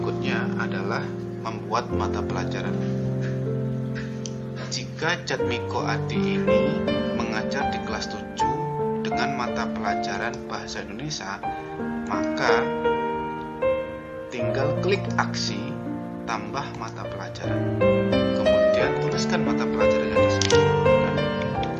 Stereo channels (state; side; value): identical; both; correlation 1.00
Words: adalah membuat mata pelajaran. Jika Jatmiko Adi ini mengajar di kelas 7 dengan mata pelajaran Bahasa Indonesia, maka tinggal klik aksi tambah mata pelajaran. Kemudian tuliskan mata pelajarannya di sini.